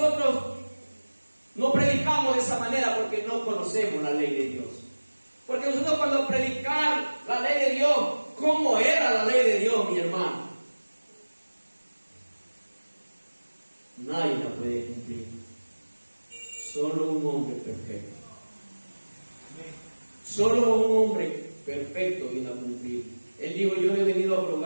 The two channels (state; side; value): inverted; both; correlation -1.00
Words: no predicamos de esa manera? Porque no conocemos la ley de Dios. Porque nosotros cuando predicar la ley de Dios, ¿cómo era la ley de Dios, mi hermano? Nadie la puede cumplir. Solo un hombre perfecto. Solo un hombre perfecto viene a cumplir. Él dijo, yo no he venido a